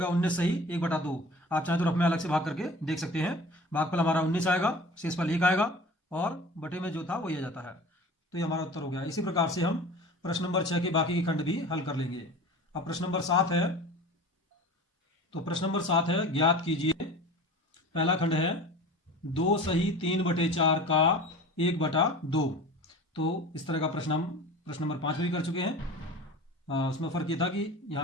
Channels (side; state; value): both; normal; correlation 0.39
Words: 19 सही 1/2। आप चाहें तो रफ में अलग से भाग करके देख सकते हैं। भागफल हमारा 19 आएगा, शेषफल 1 आएगा और बटे में जो था वही आ जाता है। तो ये हमारा उत्तर हो गया। इसी प्रकार से हम प्रश्न नंबर 6 के बाकी के खंड भी हल कर लेंगे। अब प्रश्न नंबर 7 है। तो प्रश्न नंबर 7 है, ज्ञात कीजिए। पहला खंड है 2 सही 3/4 का 1/2। तो इस तरह का प्रश्न हम प्रश्न नंबर 5 में भी कर चुके हैं। उसमें फर्क ये था कि